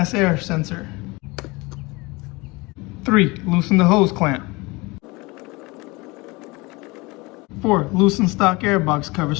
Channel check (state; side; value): quieter; right; 24.4 dB